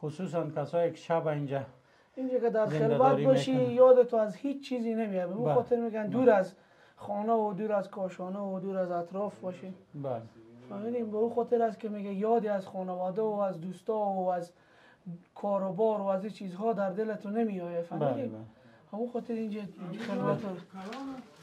خصوصا کسایی که شب اینجا که در خلوت باشی یاد تو از هیچ چیزی نمیاد. به اون خاطر میگن دور از خانه و دور از کاشانه و دور از اطراف باشی. بله. فهمیدیم به اون خاطر است که میگه یادی از خانواده و از دوستا و از کاروبار و از این چیزها در دلتون نمیآید. فهمیدیم؟ همون خاطر اینجا خلوت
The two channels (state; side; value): identical; both; correlation 1.00